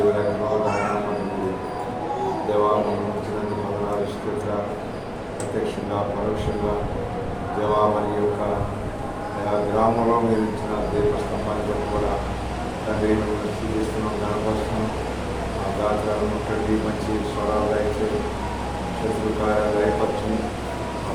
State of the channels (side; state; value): both; identical; correlation 1.00